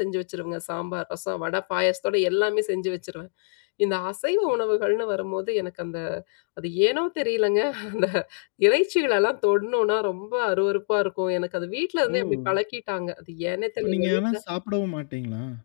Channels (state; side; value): silent; right; digital silence